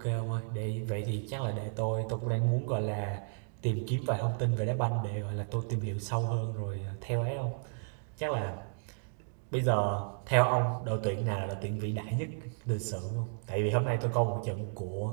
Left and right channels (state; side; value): silent; left; digital silence